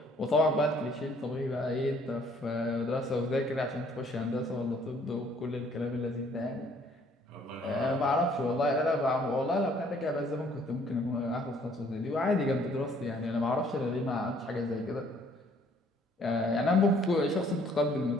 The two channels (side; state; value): both; normal; correlation 0.61